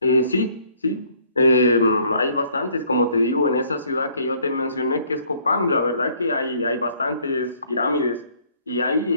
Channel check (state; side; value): inverted; both; correlation -0.62